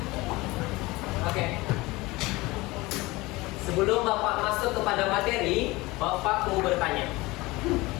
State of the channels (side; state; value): right; quieter; 21.5 dB